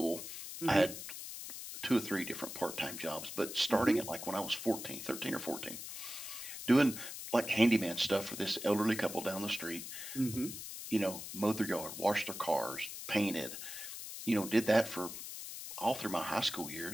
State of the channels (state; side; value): noise; left; hiss, 9 dB below the sound